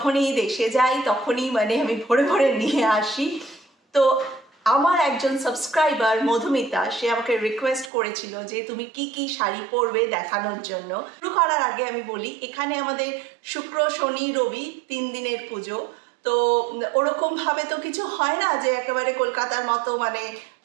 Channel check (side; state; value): left; drops out; at 7.9 s